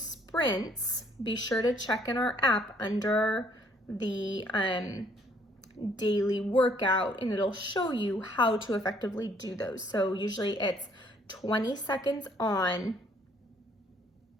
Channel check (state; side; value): normal; both; correlation 0.64